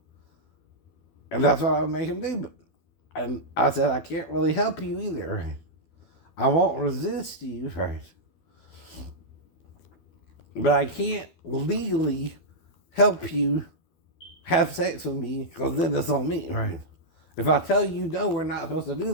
And that's what I would make him do. And I said, I can't really help you either. Right? I won't resist you. Right? But I can't legally help you have sex with me because then it's on me, right? If I tell you no, we're not supposed to do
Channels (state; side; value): late; right; 12 ms